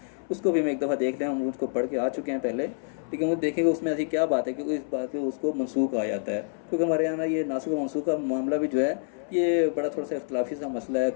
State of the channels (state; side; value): silent; right; 60 dB below the other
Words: उसको भी हम एक दफ़ा देख लें, हम उसको पढ़ के आ चुके हैं पहले, लेकिन वो देखेंगे उसमें ऐसी क्या बात है कि इस बात पे उसको मनसूख आ जाता है। क्योंकि हमारे यहाँ ये नासिक मनसूख का मामला भी जो है ये बड़ा थोड़ा सा इख्तलाफी सा मसला है,